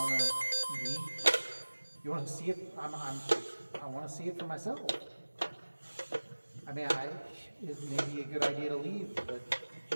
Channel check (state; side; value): inverted; both; correlation -1.00